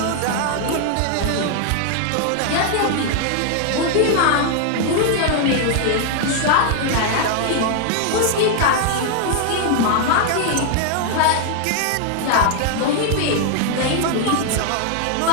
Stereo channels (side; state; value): both; different; correlation 0.00